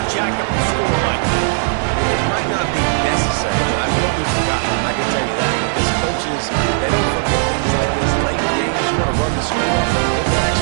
jack up the score like this. It might not be necessary, but I will be forgotten. I can tell you that. Because coaches, they don't forget things like this. Late in games, you want to run the score, get that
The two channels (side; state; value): left; silent; 60 dB below the other